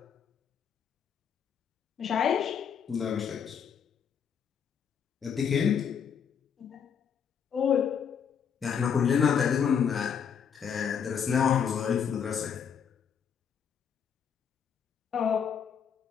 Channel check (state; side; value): quieter; right; 7.4 dB